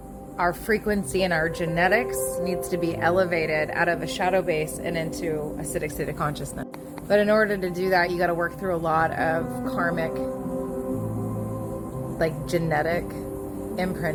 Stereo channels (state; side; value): identical; both; correlation 1.00